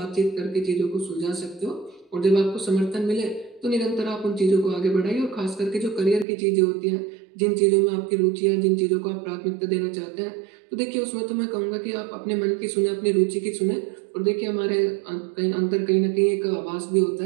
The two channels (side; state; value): left; drops out; at 6.2 s